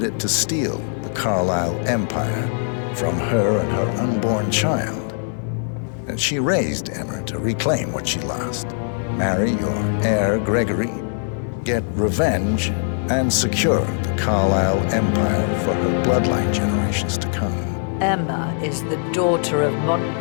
it to steal the Carlyle empire from her and her unborn child. And she raised Emma to reclaim what she lost, marry your heir, Gregory, get revenge, and secure the Carlyle empire for her bloodline generations to come. Emma is the daughter of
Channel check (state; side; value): silent; right; 65 dB below the other